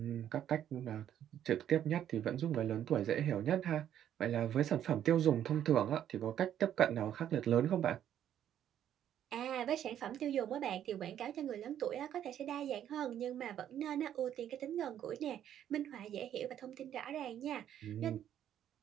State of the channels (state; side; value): quieter; left; 10.4 dB